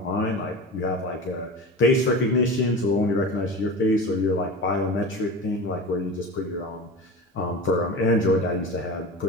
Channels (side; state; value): both; normal; correlation 0.30